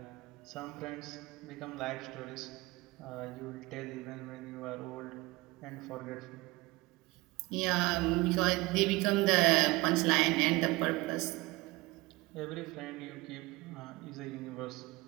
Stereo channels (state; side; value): quieter; left; 22.0 dB